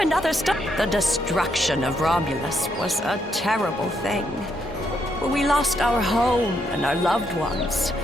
story? The destruction of Romulus was a terrible thing. We lost our home and our loved ones.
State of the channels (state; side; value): normal; both; correlation 0.76